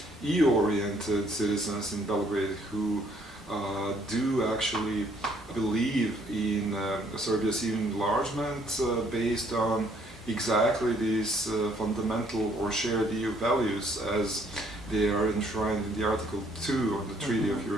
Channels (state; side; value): normal; both; correlation 0.65